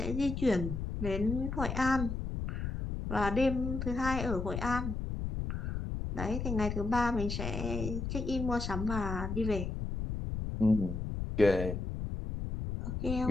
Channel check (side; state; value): left; noise; rumble, 4 dB below the sound